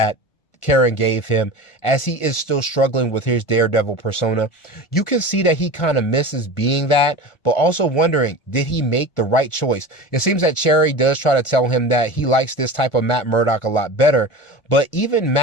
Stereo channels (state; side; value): late; right; 1.5 ms